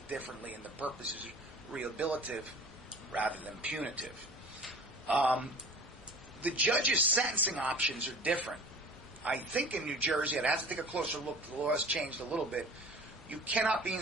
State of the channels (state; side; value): normal; both; correlation 0.42